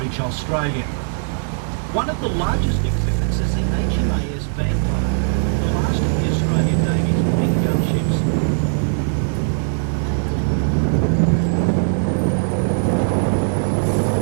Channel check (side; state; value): left; silent; digital silence